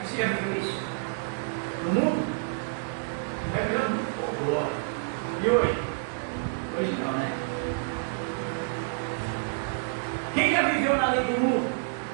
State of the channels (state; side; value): silent; left; 59 dB below the other